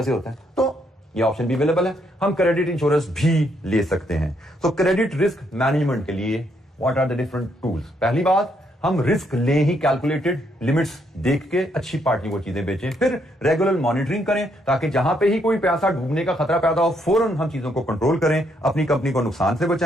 होता है। तो ये ऑप्शन भी अवेलेबल है, हम क्रेडिट इंश्योरेंस भी ले सकते हैं। तो क्रेडिट रिस्क मैनेजमेंट के लिए what are the different tools? पहली बात, हम रिस्क ले ही कैलकुलेटेड लिमिट्स देख के अच्छी पार्टी को चीजें बेचें। फिर रेगुलर मॉनिटरिंग करें ताकि जहां पे ही कोई पैसा डूबने का खतरा पैदा हो फौरन हम चीजों को कंट्रोल करें, अपनी कंपनी को नुकसान से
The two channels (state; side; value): normal; both; correlation 0.74